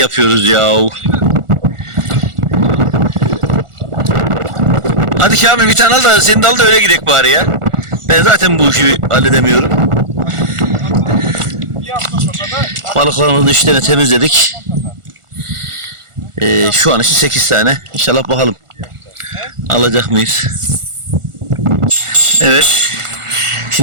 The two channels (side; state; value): left; late; 1.4 ms